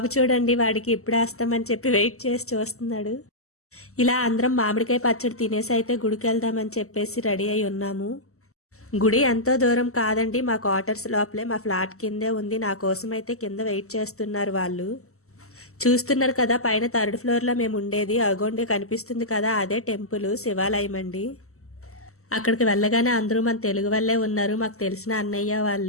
చూడండి, వాడికి ఇప్పుడు వేస్తామని చెప్పి వెయిట్ చేసి చూస్తున్నాడు. ఇలా అందరం మామిడికాయ పచ్చడి తినేసి అయితే గుడికి వెళ్దామని చెప్పేసి రెడీ అయి ఉన్నాము. గుడి ఎంతో దూరం కాదండి, మా క్వార్టర్స్ లోపలే మా ఫ్లాట్ కిందే ఉంది. నా కోసం అయితే కింద వెయిట్ చేస్తున్నారు వాళ్ళు. చూస్తున్నారు కదా, పైన 3rd ఫ్లోర్లో మేము ఉండేది. అగోండి కనిపిస్తుంది కదా, అదే టెంపుల్ శివాలయం అండి. అక్కడికి వెళ్ళగానే అందరూ మన తెలుగు వాళ్ళే ఉన్నారు, మాకు తెలిసిన అన్నయ్య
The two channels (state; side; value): late; right; 0.63 ms